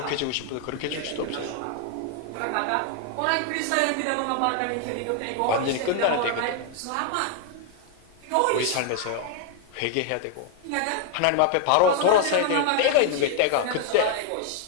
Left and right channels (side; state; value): both; different; correlation 0.00